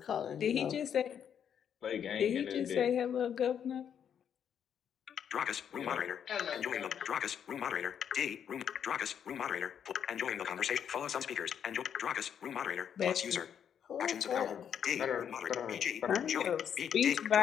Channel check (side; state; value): right; quieter; 8.5 dB